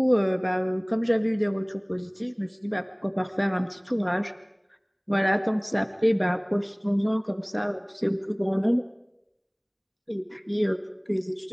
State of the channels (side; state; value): both; identical; correlation 1.00